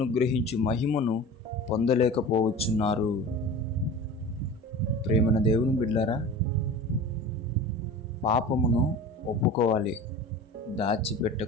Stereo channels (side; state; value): both; normal; correlation 0.35